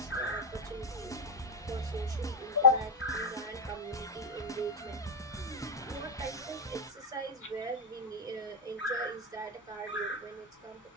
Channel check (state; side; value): normal; both; correlation 0.01